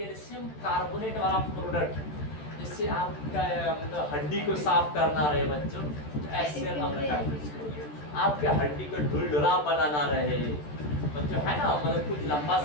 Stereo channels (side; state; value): right; late; 13 ms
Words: कार्बोनेट वाला प्रोडक्ट जिससे आपका मतलब हड्डी को साफ करना रहे बच्चों, HCl अम्ल का आपके हड्डी को ढुलढुला बनाना रहे बच्चों, है ना, मतलब कुछ लंबा